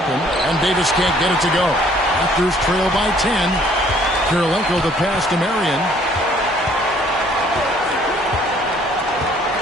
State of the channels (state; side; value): normal; both; correlation 0.60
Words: And Davis can't get it to go. Raptors trail by 10. Kirilenko the pass to Marion.